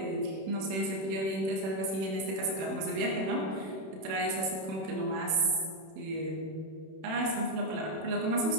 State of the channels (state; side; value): late; left; 31 ms